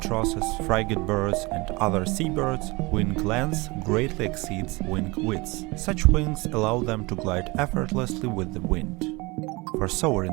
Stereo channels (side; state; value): left; quieter; 24.6 dB